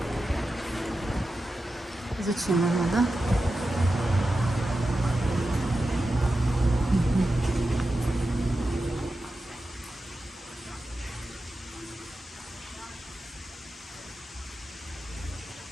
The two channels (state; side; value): normal; both; correlation 0.91